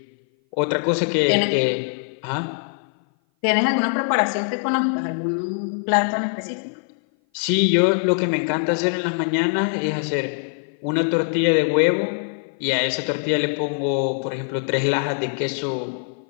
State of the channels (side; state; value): right; silent; 57 dB below the other